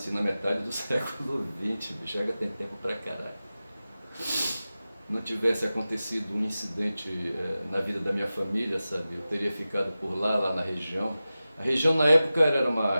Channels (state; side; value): inverted; both; correlation -0.95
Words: na metade do século XX, bicho, já tem tempo pra caralho. Não tivesse acontecido um incidente na vida da minha família, sabe? Eu teria ficado por lá na região. A região na época era uma